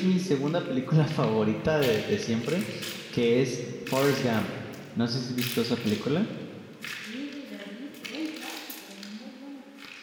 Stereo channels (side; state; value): both; identical; correlation 1.00